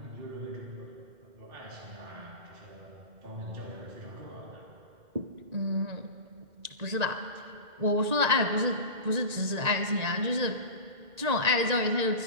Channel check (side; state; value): left; late; 1.9 ms